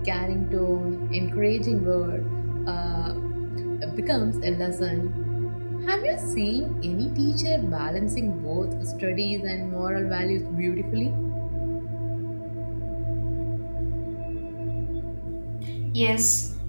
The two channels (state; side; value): inverted; both; correlation -1.00